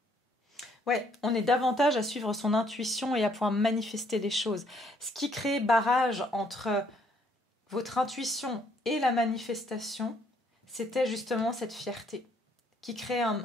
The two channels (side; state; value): both; normal; correlation 0.67